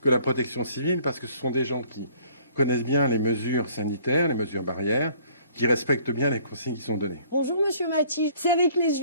que la protection civile parce que ce sont des gens qui connaissent bien les mesures sanitaires, les mesures barrières, qui respectent bien les consignes qui sont données. Bonjour Monsieur Maty, c'est avec les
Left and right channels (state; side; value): inverted; both; correlation -0.58